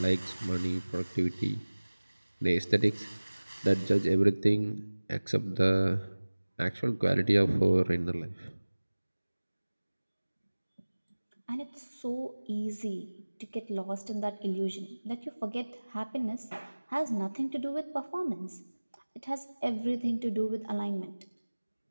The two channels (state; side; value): inverted; both; correlation -1.00